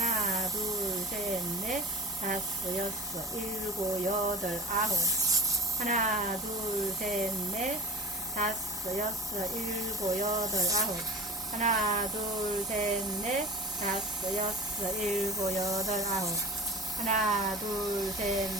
둘, 셋, 넷, 다섯, 여섯, 일곱, 여덟, 아홉. 하나, 둘, 셋, 넷, 다섯, 여섯, 일곱, 여덟, 아홉. 하나, 둘, 셋, 넷, 다섯, 여섯, 일곱, 여덟, 아홉. 하나, 둘, 셋,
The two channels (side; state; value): both; normal; correlation 0.35